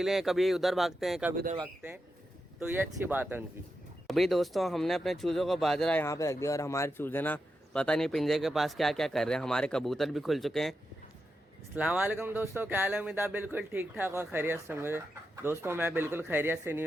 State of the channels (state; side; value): normal; both; correlation 0.87